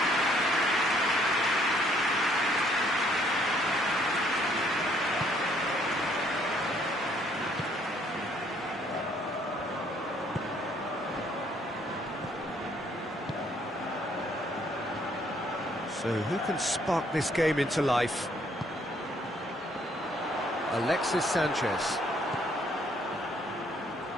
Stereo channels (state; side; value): normal; both; correlation 0.65